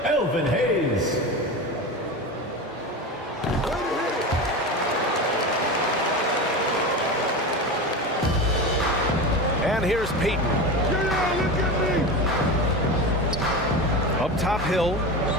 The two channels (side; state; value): both; normal; correlation 0.25